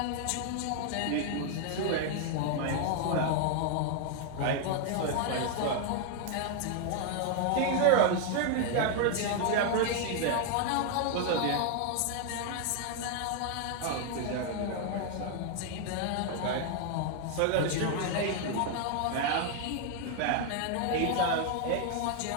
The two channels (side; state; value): both; different; correlation 0.00